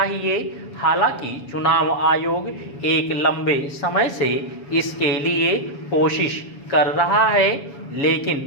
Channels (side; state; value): right; late; 7.1 ms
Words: हालांकि चुनाव आयोग एक लंबे समय से इसके लिए कोशिश कर रहा है